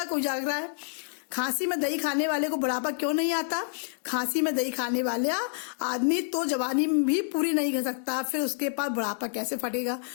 कोई जाग रहा है। खांसी में दही खाने वाले को बुढ़ापा क्यों नहीं आता? खांसी में दही खाने वाला आदमी तो जवानी भी पूरी नहीं कर सकता, फिर उसके पास बुढ़ापा कैसे फटेगा?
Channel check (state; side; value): silent; right; digital silence